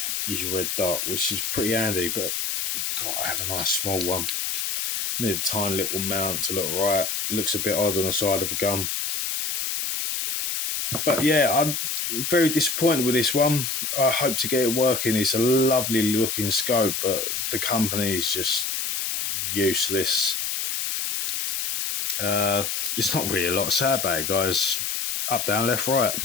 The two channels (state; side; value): noise; left; hiss, 1 dB below the sound